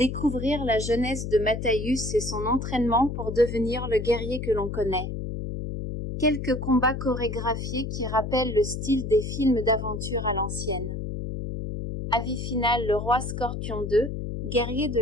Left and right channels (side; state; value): left; noise; hum, 5 dB below the sound